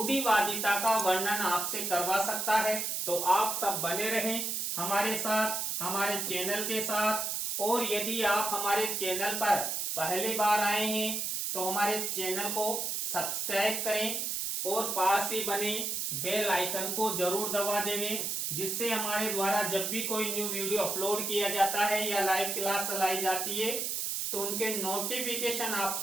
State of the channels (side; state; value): right; noise; hiss, 1 dB below the sound